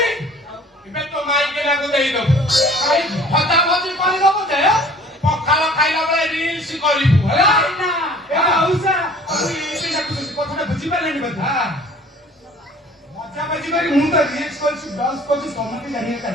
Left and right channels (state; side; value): normal; both; correlation 0.50